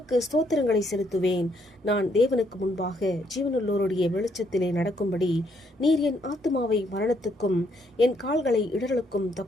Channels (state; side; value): normal; both; correlation 0.72